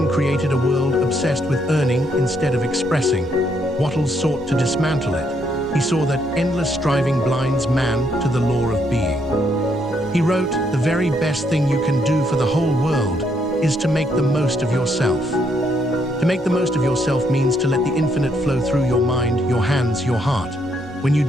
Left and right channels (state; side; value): normal; both; correlation 0.73